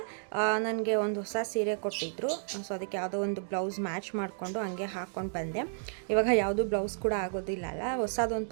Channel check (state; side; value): silent; left; digital silence